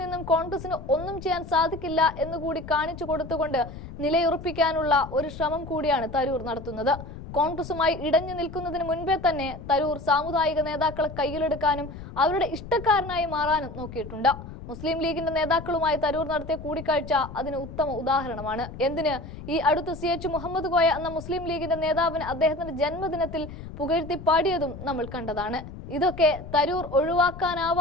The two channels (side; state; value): left; noise; rumble, 12 dB below the sound